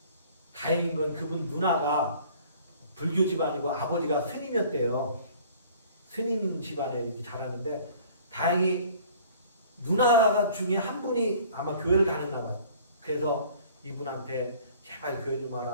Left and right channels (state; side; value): inverted; both; correlation -0.51